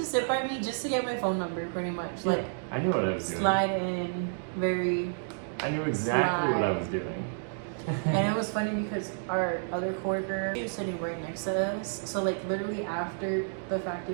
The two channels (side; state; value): left; silent; digital silence